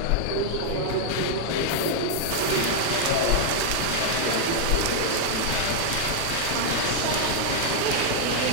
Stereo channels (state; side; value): different; both; correlation 0.00